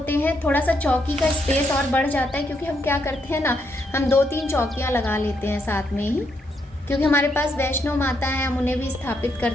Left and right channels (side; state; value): both; normal; correlation 0.77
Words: हैं, थोड़ा सा चौकी का स्पेस और बढ़ जाता है, क्योंकि हम क्या करते हैं ना, हम 2-3 चौकियाँ लगा लेते हैं साथ में ही, क्योंकि हमारे पास वैष्णो माता हैं, हम उन्हें भी स्थापित